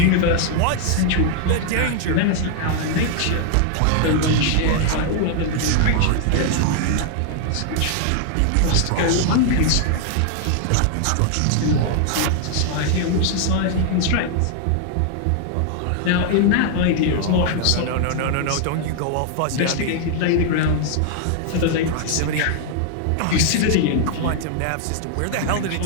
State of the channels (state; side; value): different; both; correlation 0.00